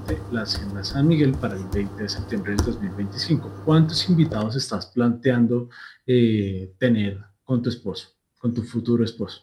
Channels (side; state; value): both; identical; correlation 1.00